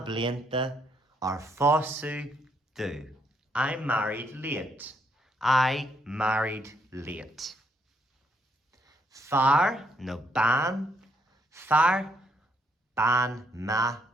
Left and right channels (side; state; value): both; normal; correlation 0.73